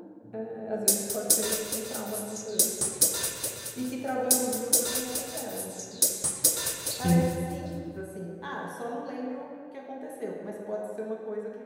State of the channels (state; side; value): identical; both; correlation 1.00